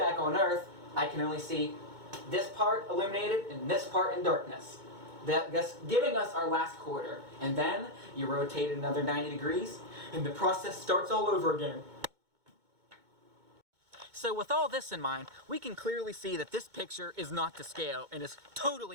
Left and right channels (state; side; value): late; left; 2.2 ms